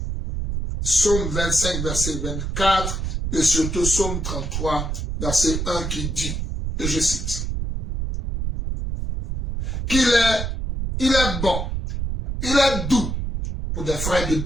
Psaume 25, verset 24, et surtout Psaume 33, verset 1 qui dit, et je cite, qu'il est bon, il est doux pour des frères de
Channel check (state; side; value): noise; right; rumble, 3 dB below the sound